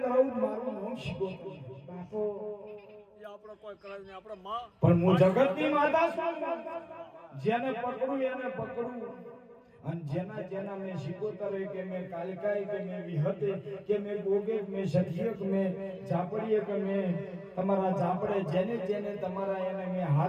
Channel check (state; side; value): identical; both; correlation 1.00